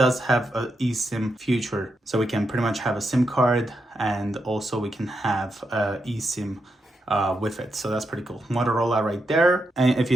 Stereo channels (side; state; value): both; normal; correlation 0.84